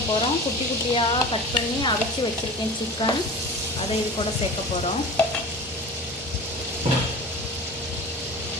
போகிறோம். குட்டி குட்டியாக கட் பண்ணி அவிச்சு வச்சுருக்கேன் சிக்கன். அதை இது கூட சேர்க்க போகிறோம்.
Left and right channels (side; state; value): both; normal; correlation 0.35